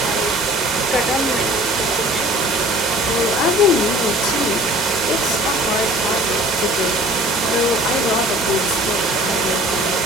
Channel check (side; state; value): both; normal; correlation 0.48